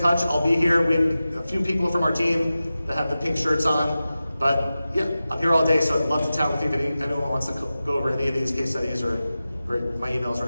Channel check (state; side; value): inverted; both; correlation -0.95